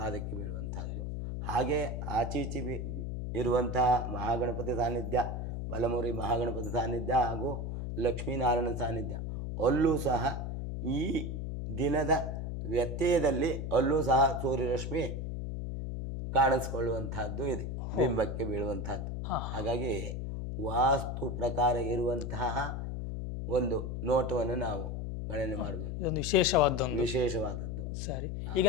ಬೀಳುವಂತಹದ್ದು. ಹಾಗೆ ಆಚೀಚಿ ಇರುವಂತಹ ಮಹಾಗಣಪತಿ ಸಾನ್ನಿಧ್ಯ, ಬಲಮುರಿ ಮಹಾಗಣಪತಿ ಸಾನ್ನಿಧ್ಯ ಹಾಗೂ ಲಕ್ಷ್ಮೀನಾರಾಯಣ ಸಾನ್ನಿಧ್ಯ, ಅಲ್ಲೂ ಸಹ ಈ ದಿನದ ವ್ಯತ್ಯಯದಲ್ಲಿ ಅಲ್ಲೂ ಸಹ ಸೂರ್ಯರಶ್ಮಿ ಕಾಣಿಸ್ಕೊಳ್ಳುವಂತಹದ್ದು ಇದೆ, ಬಿಂಬಕ್ಕೆ ಬೀಳುವಂತಹದ್ದು. ಹಾಗಾಗಿ ವಾಸ್ತು ಪ್ರಕಾರ ಇರುವಂತಹ ಒಂದು ನೋಟವನ್ನು ನಾವು ಗಣನೆ ಮಾಡಬೇಕು. ಇದೊಂದು ವಿಶೇಷವಾದದ್ದು. ಸರಿ, ಈಗ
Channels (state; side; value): noise; left; hum, 4 dB below the sound